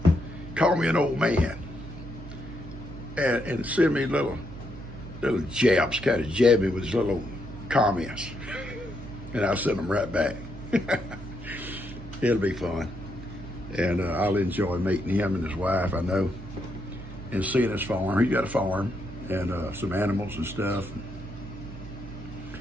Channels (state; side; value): noise; right; hum, 12 dB below the sound